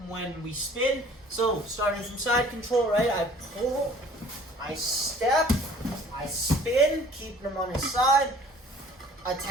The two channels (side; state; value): both; normal; correlation 0.52